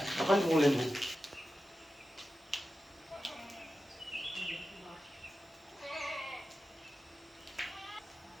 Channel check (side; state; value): both; normal; correlation 0.92